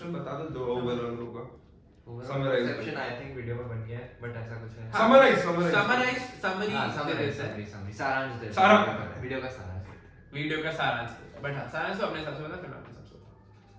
बता दो जो ओवरऑल होगा। Summarize perception I think video में बन गया है, बट ऐसा कुछ है। समरी हाँ, समरी समरी सारांश दे सारा- वीडियो का सारांश देते हैं। वीडियो का सारांश बट हाँ सारांश तो अपने हिसाब से बता फिर मैं अपने हिसाब से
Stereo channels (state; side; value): identical; both; correlation 1.00